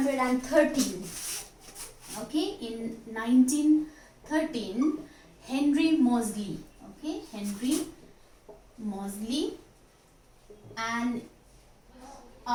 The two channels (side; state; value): both; identical; correlation 1.00